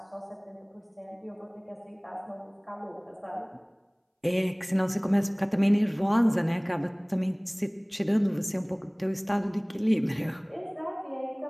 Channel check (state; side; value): identical; both; correlation 1.00